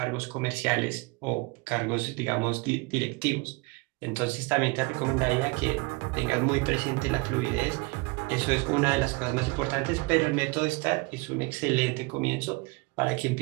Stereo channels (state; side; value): quieter; left; 26.7 dB